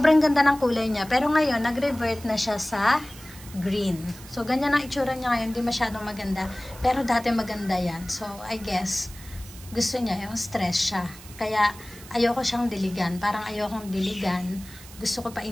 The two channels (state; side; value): noise; right; hiss, 18 dB below the sound